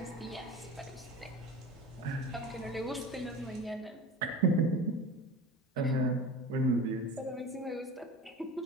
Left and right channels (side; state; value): both; normal; correlation 0.34